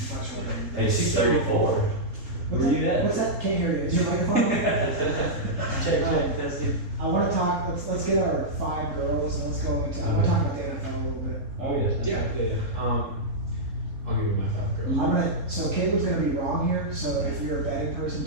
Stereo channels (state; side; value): late; left; 3.8 ms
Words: much older. Hey, she's 34. What's Where you at? What's that? Can't hear you. Is your microphone? check, testing. I want to talk. Let's get our 5 girls and let's go into. I want to talk about the NFL a little bit. Oh yes. Yeah. I'll give you my 5 girls. So Caleb's gonna be wrong here. So if you're a betting person,